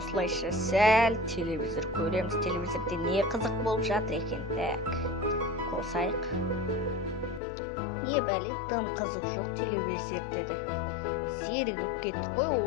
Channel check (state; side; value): drops out; right; at 7.4 s